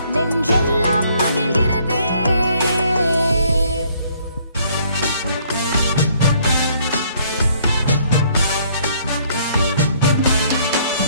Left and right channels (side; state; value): both; inverted; correlation -0.64